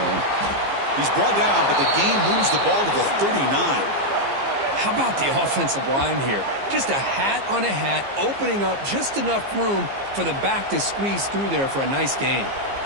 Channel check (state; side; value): late; left; 15 ms